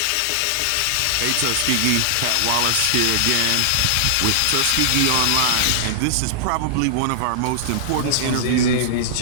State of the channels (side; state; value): both; different; correlation -0.01